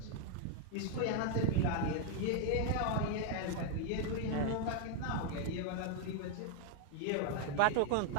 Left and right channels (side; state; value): both; different; correlation 0.00